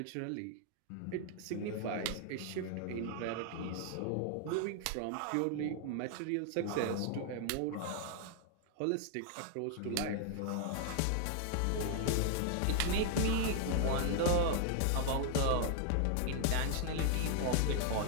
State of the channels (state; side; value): different; both; correlation 0.00